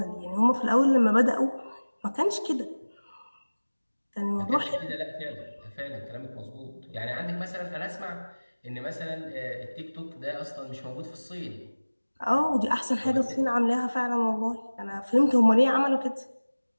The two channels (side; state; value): both; inverted; correlation -1.00